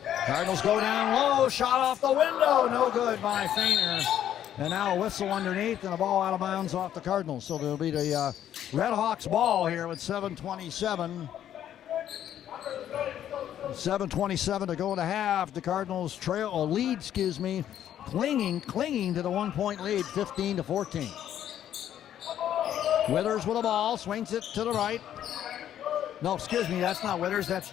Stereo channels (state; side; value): quieter; right; 10.7 dB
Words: Cardinals go down low. Shot off the window. No good by Feiner. And now a whistle underneath and a ball out of bounds off the Cardinals. So there'll be the Red Hawks ball here with 7:27. 7:27 to go in the half. The Cardinals lead, clinging to the 1-point lead, 15-14. Withers with the ball, swings it to the right. No, excuse me, that's not Withers, that's